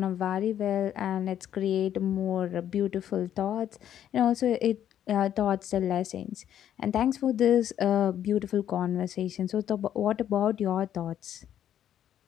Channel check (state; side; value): quieter; right; 10.5 dB